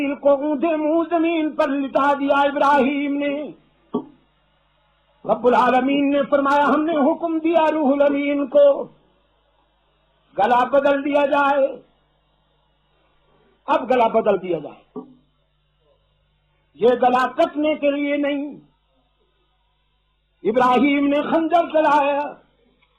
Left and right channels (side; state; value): both; identical; correlation 1.00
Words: کو اونھے منہ زمین پر لٹا دیا ابراہیم نے. رب العالمین نے فرمایا ہم نے حکم دیا روح الامین کو گلا بدل دیا جائے. اب گلا بدل دیا جائے، یہ گلا کٹنے کے لیے نہیں. ابراہیم نے خنجر چلایا